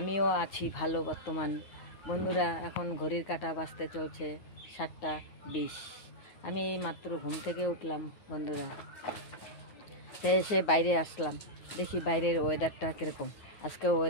আছি ভালো বর্তমান। বন্ধুরা, এখন ঘড়ির কাঁটা বাজতে চলছে 7:20। আমি এই মাত্র ঘুম থেকে উঠলাম বন্ধুরা। এসে বাইরে আসলাম, দেখি বাইরের ওয়েদারটা কীরকম। আজকে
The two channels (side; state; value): right; late; 9.4 ms